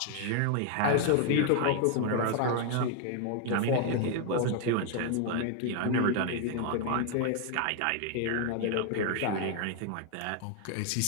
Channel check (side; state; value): both; different; correlation 0.00